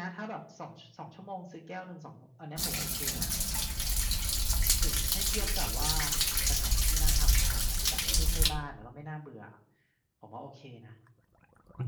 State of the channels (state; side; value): identical; both; correlation 1.00